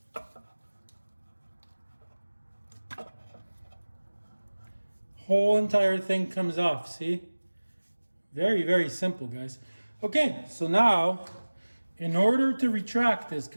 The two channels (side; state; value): both; inverted; correlation -1.00